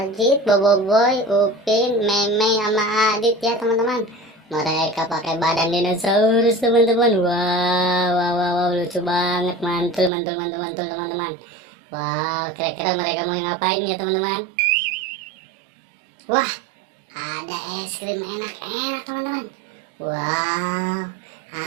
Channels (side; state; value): left; drops out; at 10.1 s